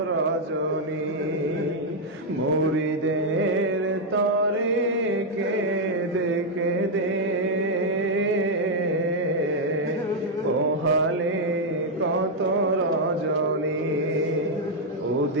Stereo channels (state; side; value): normal; both; correlation 0.00